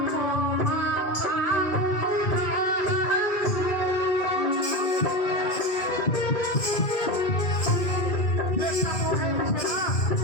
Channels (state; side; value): late; right; 2.2 ms